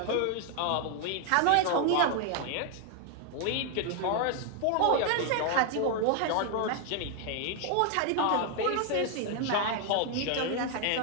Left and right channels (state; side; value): different; both; correlation 0.00